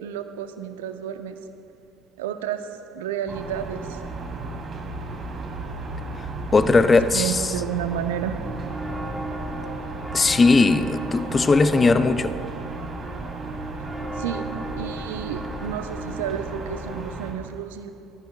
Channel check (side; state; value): both; normal; correlation 0.76